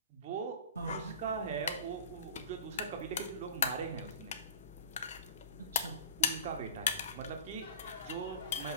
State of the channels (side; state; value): both; inverted; correlation -0.36